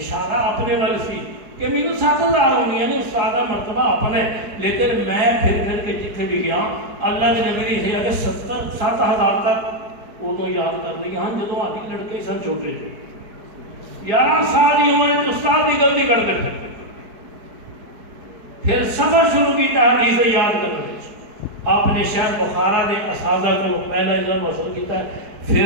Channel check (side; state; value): left; late; 4.5 ms